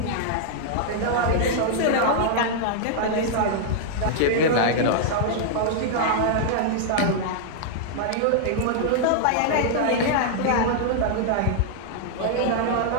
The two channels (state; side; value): different; both; correlation -0.01